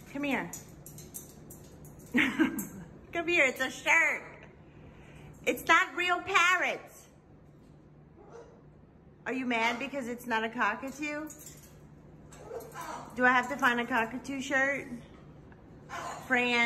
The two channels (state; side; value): identical; both; correlation 1.00